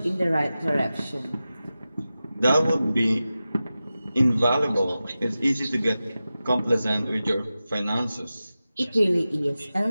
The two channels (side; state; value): both; inverted; correlation -0.94